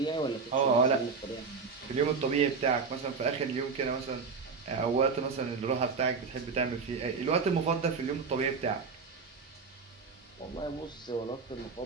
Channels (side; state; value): left; quieter; 5.0 dB